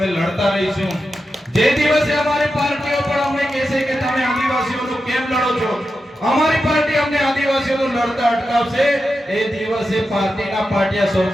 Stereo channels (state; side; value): normal; both; correlation 0.90